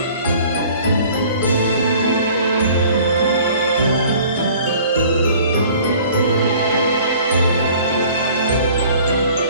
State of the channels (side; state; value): both; inverted; correlation -0.51